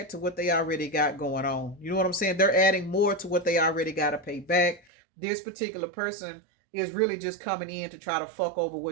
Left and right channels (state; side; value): drops out; left; at 4.8 s